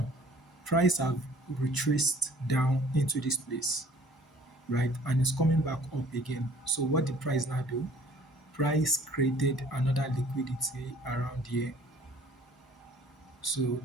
price have retraced down into this place, right? And it's coming back up again. So what the price now do? Price created another liquidity around here. So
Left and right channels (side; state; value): both; normal; correlation 0.54